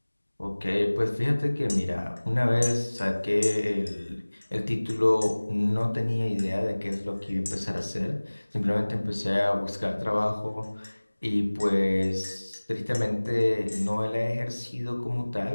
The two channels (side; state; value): both; inverted; correlation -1.00